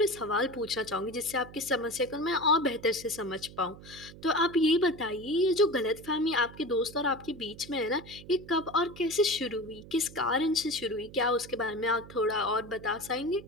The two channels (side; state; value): right; noise; hum, 17 dB below the sound